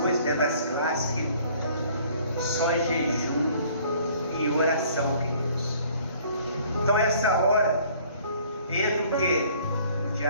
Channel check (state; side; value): inverted; both; correlation -0.56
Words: dentro das classes que só é jejum e oração, queridos. Então essa hora, entra o quê? O